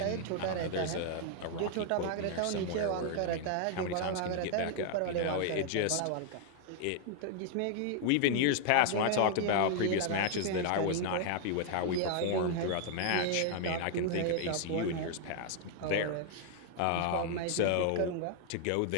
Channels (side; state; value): both; different; correlation 0.00